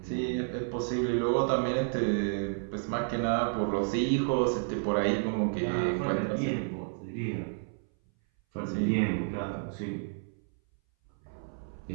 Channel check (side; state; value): left; silent; 57 dB below the other